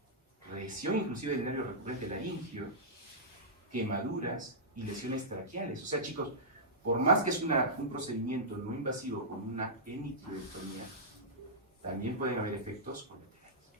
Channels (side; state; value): both; normal; correlation -0.14